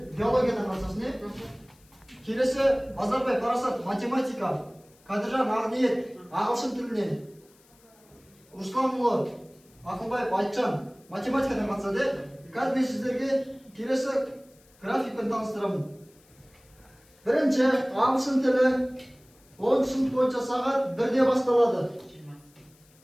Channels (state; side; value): noise; left; hiss, 30 dB below the sound